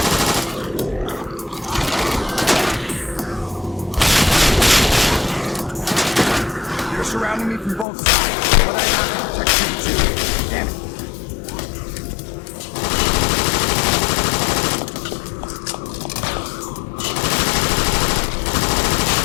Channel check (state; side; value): drops out; right; at 7.9 s